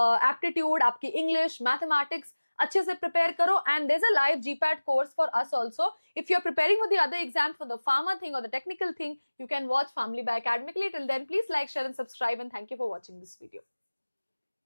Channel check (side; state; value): both; inverted; correlation -1.00